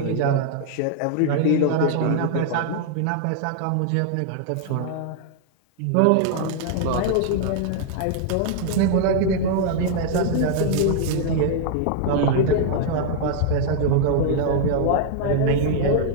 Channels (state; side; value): different; both; correlation 0.00